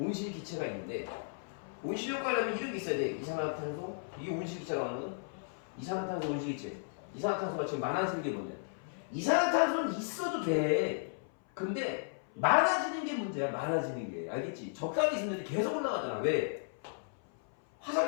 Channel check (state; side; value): silent; right; 55 dB below the other